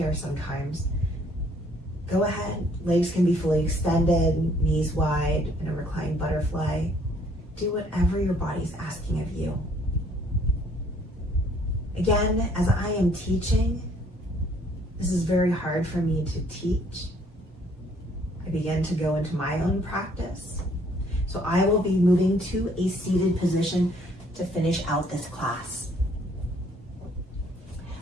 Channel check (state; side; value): normal; both; correlation 0.62